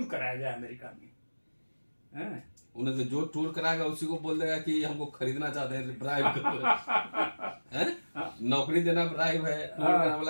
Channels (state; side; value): inverted; both; correlation -1.00